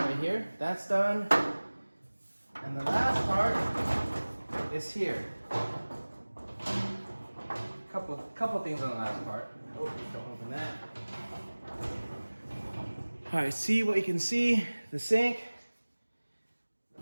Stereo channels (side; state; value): both; inverted; correlation -1.00